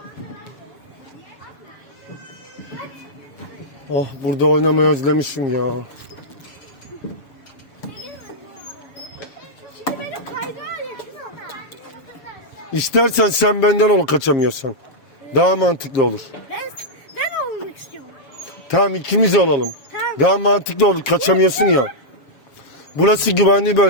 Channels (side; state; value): right; late; 7.4 ms